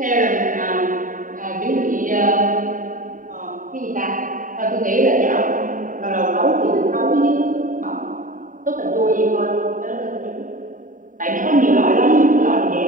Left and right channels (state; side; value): late; left; 0.39 ms